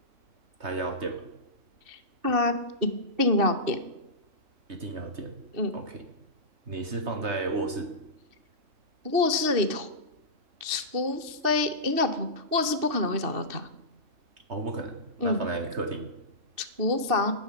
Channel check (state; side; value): late; left; 2.7 ms